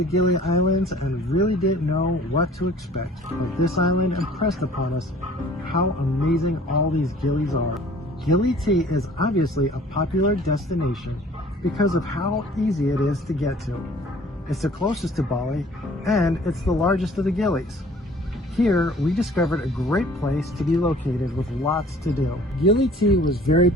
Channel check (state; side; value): normal; both; correlation 0.51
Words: Gili Islands and really didn't know what to expect. But this island impressed upon us how amazing all these gillies are. Gili tea is obviously a popular destination because of how easy it is to get to. It's the closest to Bali and it's the largest of the gillies. Here, we discovered a great place to be located with lots to do. Gili tea was very